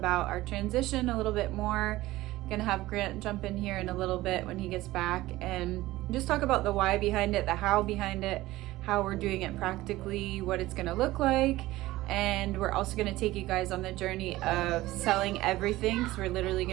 our transition a little bit more. Gonna have Grant jump in here in a little bit when he gets back and just talk about the why behind it, the how behind it, how we're doing it practically, what it's gonna look like. And we're also gonna take you guys on the journey of selling everything, because we're literally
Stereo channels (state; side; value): quieter; left; 17.5 dB